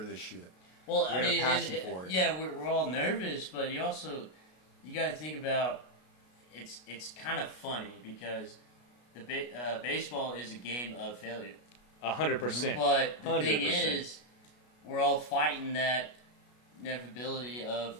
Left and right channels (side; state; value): right; late; 33 ms